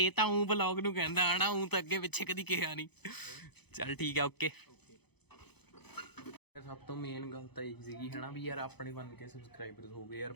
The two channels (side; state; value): right; late; 0.98 ms